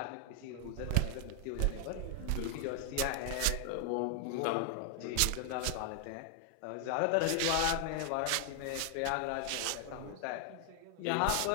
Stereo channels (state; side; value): different; both; correlation 0.00